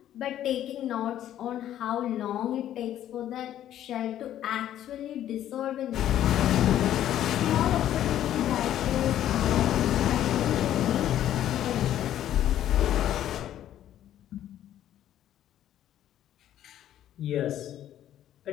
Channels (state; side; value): quieter; right; 11.7 dB